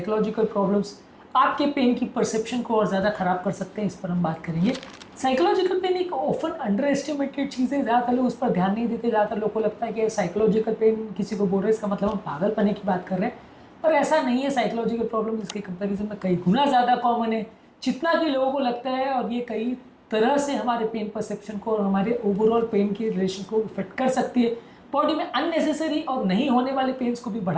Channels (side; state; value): both; identical; correlation 1.00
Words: प्रॉब्लम्स आपके पेन की परसेप्शन को और ज़्यादा ख़राब कर सकते हैं, इस पर हम बात करेंगे। साइकोलॉजिकल पेन एक ऑफन अंडर एस्टिमेटेड चीज़ है, ज़्यादातर लोग उस पर ध्यान नहीं देते। ज़्यादातर लोग को लगता है कि साइकोलॉजिकल पेन किसी को बोल रहे हैं इसका मतलब हम पागलपने की बात कर रहे हैं, पर ऐसा नहीं है। साइकोलॉजिकल प्रॉब्लम इसके कंपेरिजन में कई गुना ज़्यादा कॉमन है जितना कि लोगों को लगता है, और ये कई तरह से हमारे पेन परसेप्शन को और हमारे ओवरऑल पेन के रिलेशन को इफेक्ट कर सकती है। बॉडी में अननेसेसरी और नहीं होने वाले पेन्स को भी